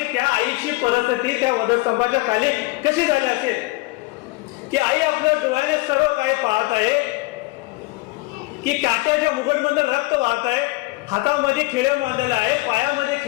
त्या आईची परिस्थिती त्या वधस्तंभाच्या खाली कशी झाली असेल की आई आपल्या डोळ्याने सर्व काही पाहत आहे की काट्याच्या मुघडमधून रक्त वाहत आहे, हातामध्ये खिळे मारलेले आहे, पायामध्ये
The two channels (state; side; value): quieter; right; 22.2 dB